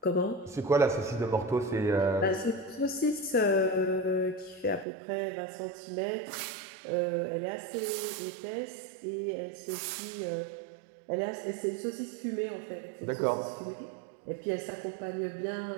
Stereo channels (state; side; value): drops out; left; at 4.9 s